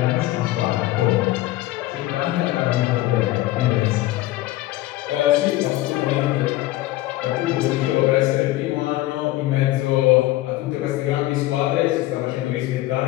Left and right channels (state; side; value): quieter; right; 16.6 dB